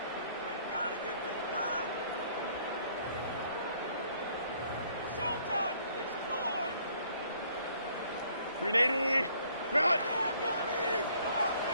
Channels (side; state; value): both; inverted; correlation -0.62